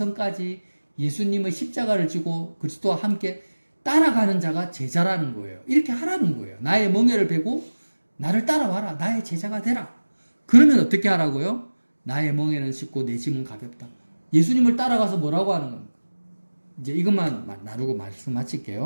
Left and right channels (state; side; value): inverted; both; correlation -1.00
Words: 예수님의 십자가를 지고 그리스도와 함께 따라가는 자가 제자라는 거예요. 이렇게 하라는 거예요. 나의 멍에를 베고 나를 따라와라. 나의 제자가 되라. 그러면 어떻게 하라고요? 나의 멍에는 쉽고 내 짐은 가볍다. 예수님을 따라가서 뭐라고 하는 겁니까? 이제 이것만 나누고 말씀